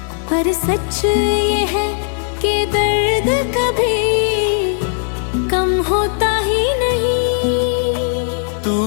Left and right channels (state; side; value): silent; right; digital silence